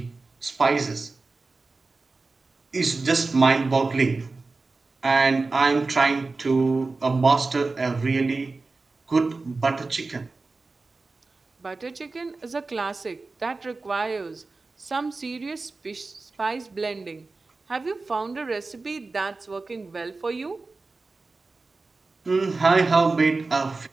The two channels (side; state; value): left; quieter; 3.7 dB